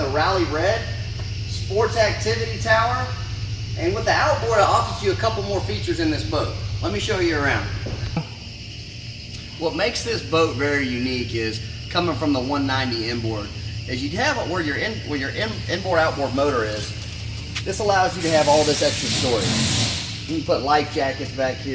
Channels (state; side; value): identical; both; correlation 1.00